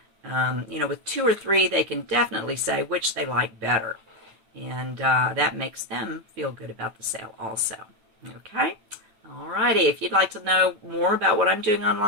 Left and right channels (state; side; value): late; left; 9.1 ms